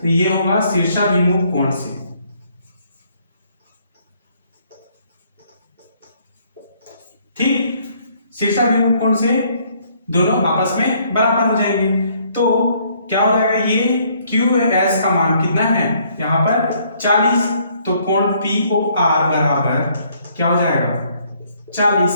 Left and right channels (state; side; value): inverted; both; correlation -0.65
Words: ये होगा शीर्षाभिमुख कोण से। ठीक, शीर्षाभिमुख कोण से दोनों आपस में बराबर हो जाएंगे। तो क्या हो जाएगा, ये क्यू एस का मान कितना है यहां पर 40, तो कोण पी ओ आर बराबर क्या हो जाएगा 40